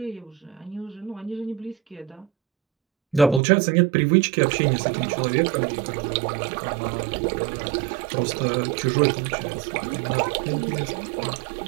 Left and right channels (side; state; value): left; drops out; at 3.4 s